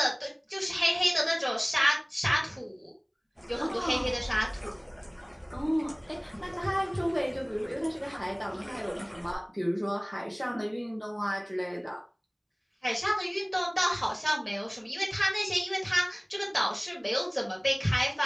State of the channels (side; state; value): both; identical; correlation 1.00